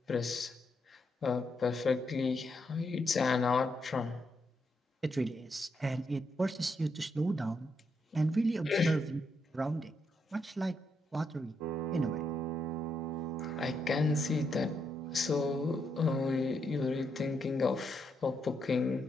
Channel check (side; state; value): both; normal; correlation 0.80